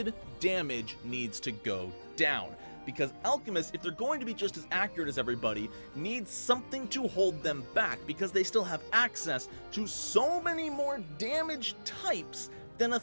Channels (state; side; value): inverted; both; correlation -1.00